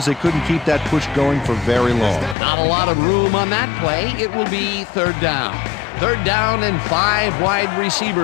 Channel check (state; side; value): drops out; right; at 2.4 s